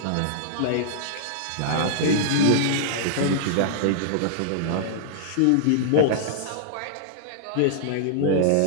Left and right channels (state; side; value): different; both; correlation -0.01